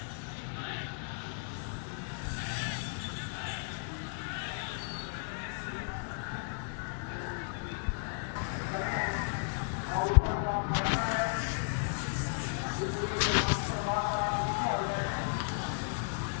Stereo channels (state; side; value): silent; right; digital silence